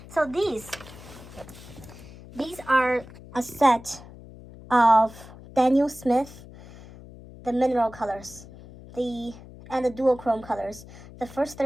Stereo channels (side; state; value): left; noise; hum, 18 dB below the sound